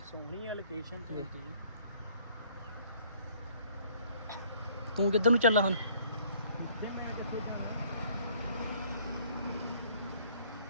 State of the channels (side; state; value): both; inverted; correlation -0.60